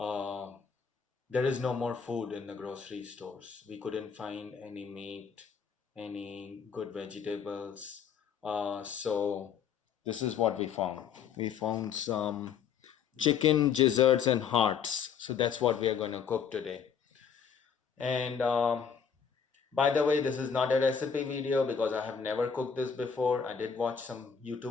there is no more food in the grocery stores. We couldn't find any meat, any good vegetables. So this is what we found. We found some chicken gizzards and hearts. So that's what we are going to cook today. And by the way, this is not a recipe video because I have never cooked this before. I did watch some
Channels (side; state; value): right; quieter; 6.9 dB